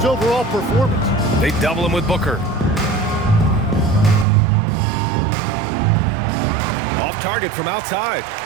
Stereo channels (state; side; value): drops out; left; at 4.2 s